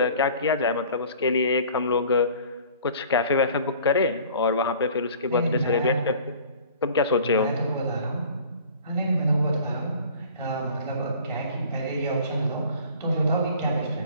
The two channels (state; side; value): inverted; both; correlation -0.48